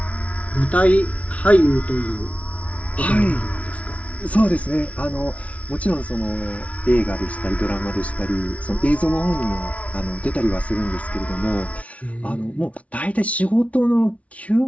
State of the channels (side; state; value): right; late; 0.065 ms